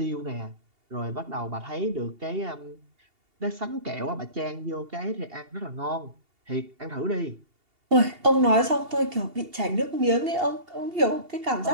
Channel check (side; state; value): left; late; 2.8 ms